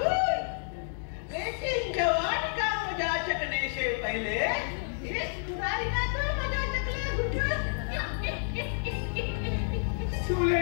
लेकिन जवानी का मजा चखने से पहले इस बुराई का तो मजा चख ले हुजूर।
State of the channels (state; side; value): silent; right; digital silence